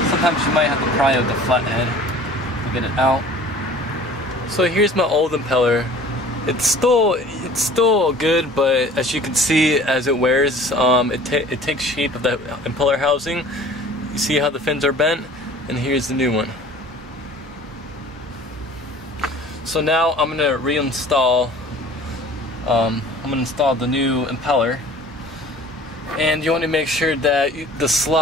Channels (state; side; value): normal; both; correlation 0.47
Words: Sometimes you might have to pry out the flathead to get it out. So here's my old impeller. It's still good, but as you can see, as it wears, it takes shape of that impeller housing. You see how the fins are bent, and here's the new one. So now I'm gonna reinstall. I'm gonna install the new impeller, and you want to make sure that the